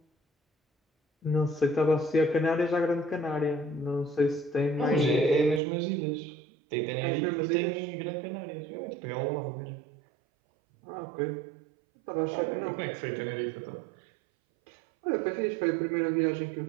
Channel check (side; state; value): left; drops out; at 5.6 s